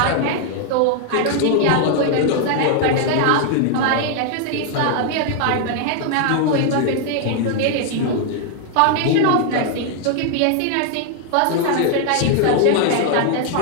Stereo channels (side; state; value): both; different; correlation 0.00